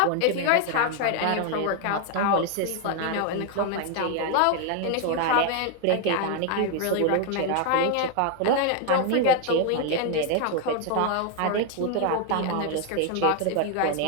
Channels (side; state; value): both; different; correlation 0.00